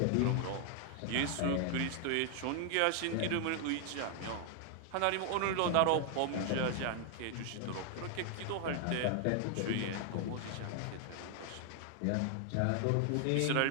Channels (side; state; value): both; different; correlation 0.00